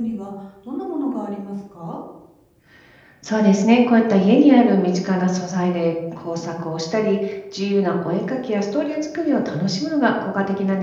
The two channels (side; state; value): both; identical; correlation 1.00